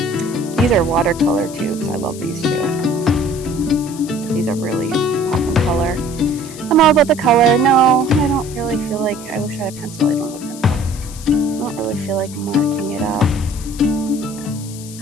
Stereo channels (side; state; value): left; noise; hiss, 16 dB below the sound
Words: These are watercolor tubes. I love these too. These are really popping color. I'm all about the color. No, I don't really feel like, I wish I had a pencil. I don't have a pencil. I don't really feel like marking it up. This